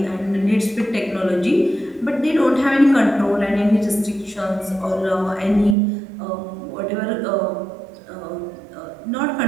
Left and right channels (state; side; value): drops out; left; at 5.8 s